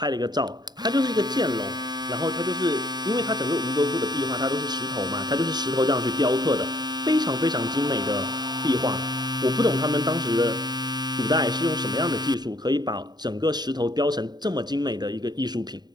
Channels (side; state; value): left; late; 0.20 ms